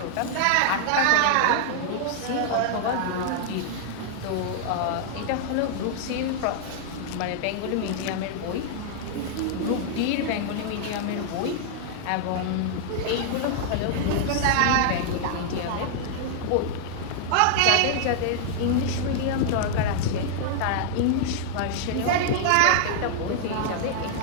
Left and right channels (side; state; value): both; different; correlation -0.01